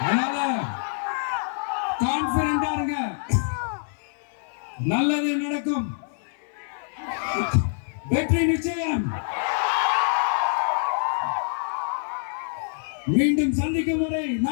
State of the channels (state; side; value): silent; right; 56 dB below the other